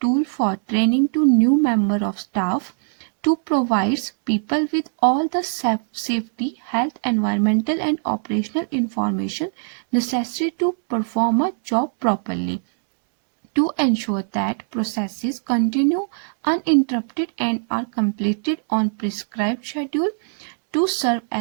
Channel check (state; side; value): silent; left; digital silence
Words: tool for training to new member of staff, to provides people with all the safety, health, environmental and operational information necessary to perform a job properly, to ensure that processes continue uninterrupted and are completed on prescribed schedule, to serve